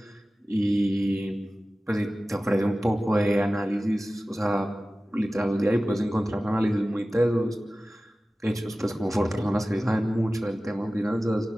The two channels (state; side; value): normal; both; correlation 0.96